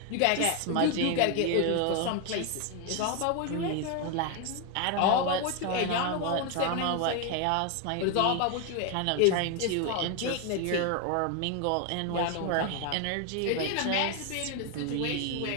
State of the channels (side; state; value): both; different; correlation 0.01